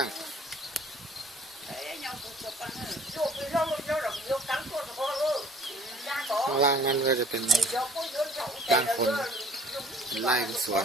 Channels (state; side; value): normal; both; correlation 0.54